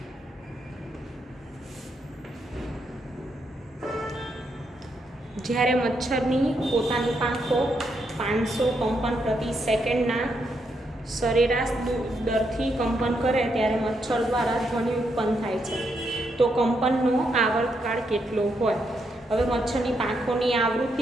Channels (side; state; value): both; normal; correlation 0.79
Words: જ્યારે મચ્છરની પોતાની પાંખો 500 કંપન પ્રતિ સેકન્ડના સરેરાશ દરથી કંપન કરે ત્યારે મચ્છર દ્વારા ધ્વનિ ઉત્પન્ન થાય છે. તો કંપનનો આવર્તકાળ કેટલો હોય? હવે મચ્છરની પાંખોની